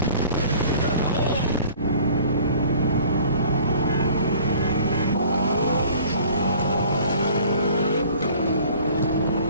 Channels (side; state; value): both; inverted; correlation -0.51